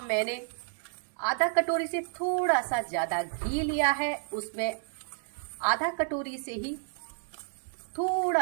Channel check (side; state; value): left; silent; digital silence